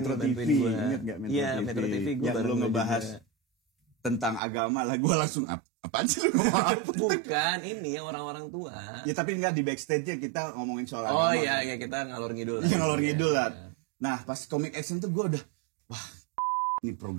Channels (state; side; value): drops out; left; at 4.4 s